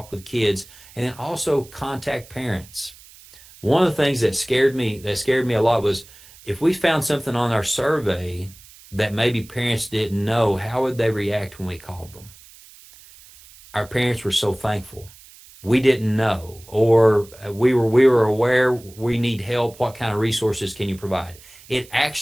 with kids and then also contact parents. One of the things that scared me a lot was if we found something on our survey that maybe parents didn't know, how would they react when we called them? Our parents were so thankful. We didn't know, or we were aware we need help. What kind of resources can you provide? It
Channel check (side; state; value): right; noise; hiss, 22 dB below the sound